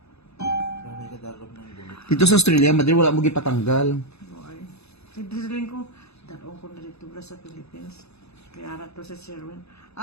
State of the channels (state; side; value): late; right; 0.79 ms